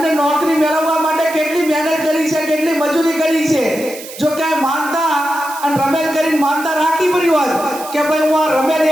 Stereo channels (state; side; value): noise; right; hiss, 14 dB below the sound